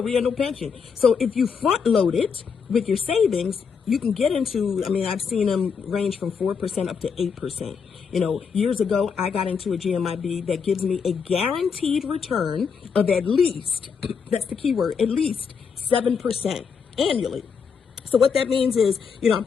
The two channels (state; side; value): quieter; right; 6.1 dB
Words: we have no pension. So if you front load it with your savings, you can get into, I've seen them range from 4% up to 8%. Years ago, I got into a GMIB that gives me a guaranteed return of at least, that's the key word, at least 7% annually. So what that means is, I